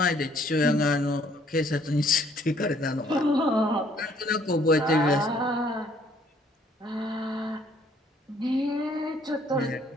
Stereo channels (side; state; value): both; normal; correlation 0.63